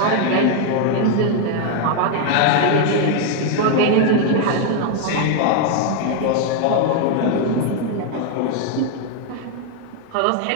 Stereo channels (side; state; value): both; different; correlation 0.00